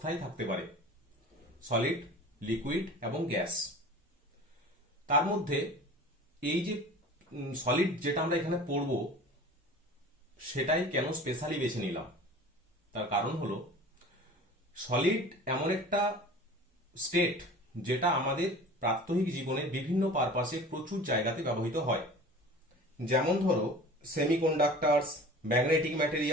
থাকতে পারে: সলিড, লিকুইড এবং গ্যাস। তার মধ্যে এই যে সলিড যেটা আমরা এখানে পড়বো সেটাই কেন স্পেশালি বেছে নিলাম, তার কারণ হলো সলিড এমন একটা স্টেট যেটা আমাদের প্রাত্যহিক জীবনের বিভিন্ন পারপাসে প্রচুর জায়গাতে ব্যবহৃত হয়। যেমন ধরো সেমিকন্ডাক্টরস, ম্যাগনেটিক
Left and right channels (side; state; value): both; normal; correlation 0.40